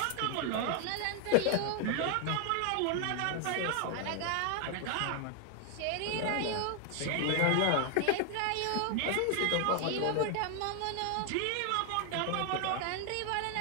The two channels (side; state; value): both; different; correlation 0.00